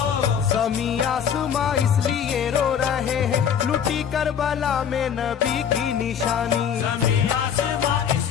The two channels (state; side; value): quieter; right; 8.1 dB